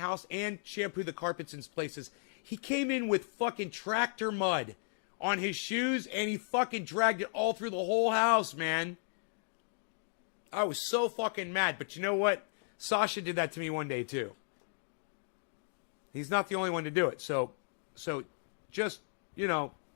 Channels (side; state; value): right; silent; digital silence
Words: and shampoo the carpets in places. He came in with fucking tractor mud on his shoes, and he fucking dragged it all through the whole house, man. I was so fucking mad. But you know what? Sasha did that to me one day, too. He's not the only one to do it. So just, you know,